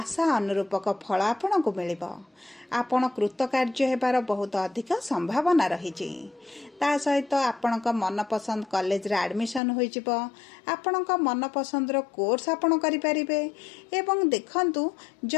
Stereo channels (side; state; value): right; drops out; at 9.6 s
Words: अनुरूपक फल आपणको मिलिबो। आपण कृतकार्य हेबार बहुत अधिक संभावना रहिछि। ता सहित आपणक मनपसंद कॉलेज रे एडमिशन होई जिवो, आपणक मनपसंद रो कोर्स आपण करि परिबे। एवं देखंतु